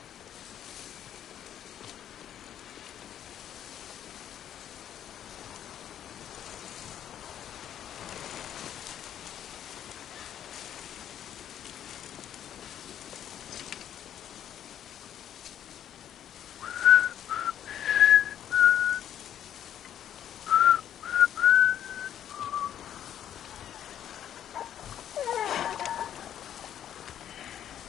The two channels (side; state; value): right; quieter; 10.3 dB